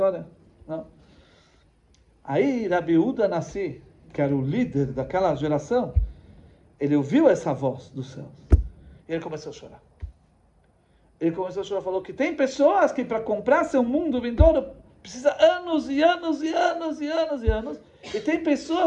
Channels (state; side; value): identical; both; correlation 1.00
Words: Não? Aí Rabi Yehuda Nassi, que era o líder daquela geração, ele ouviu essa voz do céu. E ele começou a chorar. Falou que tem pessoas que para comprar seu mundo vindouro precisa anos e anos. E tem